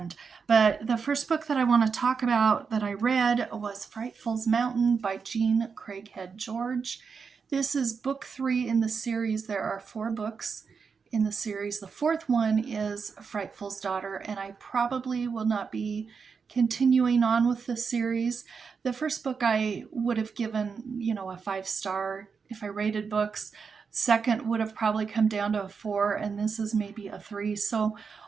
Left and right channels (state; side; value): quieter; left; 5.6 dB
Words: But the first book that I want to talk about that I read was Frightful's Mountain by Jean Craighead George. This is book 3 in the series. There are 4 books in the series. The 4th one is Frightful's Daughter, and I probably will not be continuing on with the series. The first book I would have given, a 5-star if I rated books. Second would have probably come down to a 4, and this is maybe a 3. So